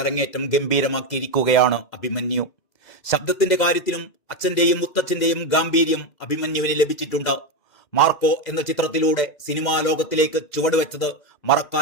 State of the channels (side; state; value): right; late; 2.0 ms